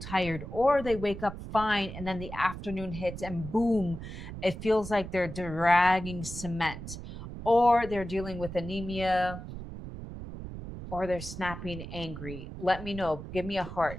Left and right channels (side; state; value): right; noise; rumble, 10 dB below the sound